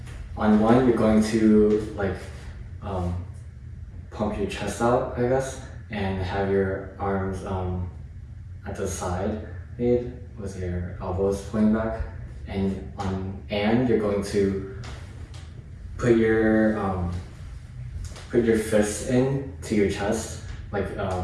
on 1, you're going to like pump your chest out, I guess, and have your arms at the side made with your elbows pointing back. And on you're going to put your fists in to your chest, like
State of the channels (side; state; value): both; identical; correlation 1.00